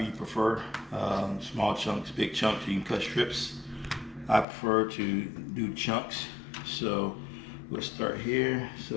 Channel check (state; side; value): drops out; right; at 4.5 s